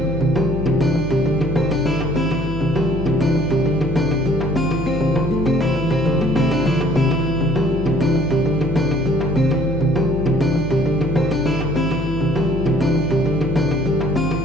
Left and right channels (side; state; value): left; noise; hum, 6 dB below the sound